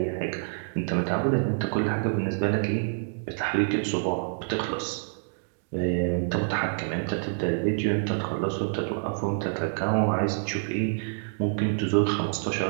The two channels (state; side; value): silent; left; digital silence